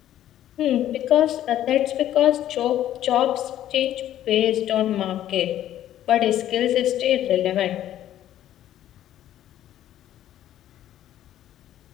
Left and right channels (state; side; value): quieter; right; 12.1 dB